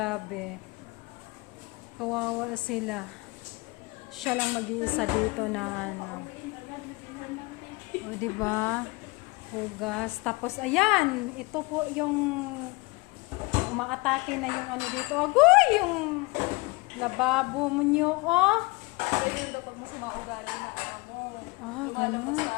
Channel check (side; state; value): right; quieter; 25.3 dB